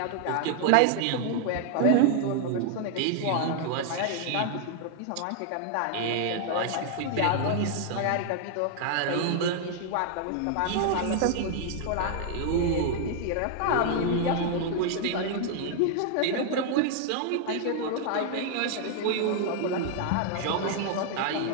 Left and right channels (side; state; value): both; different; correlation 0.00